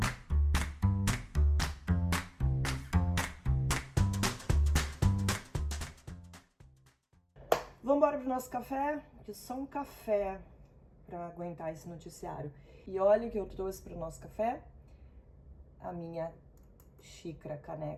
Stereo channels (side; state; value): both; identical; correlation 1.00